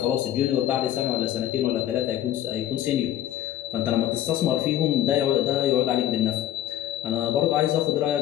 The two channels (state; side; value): quieter; right; 11.9 dB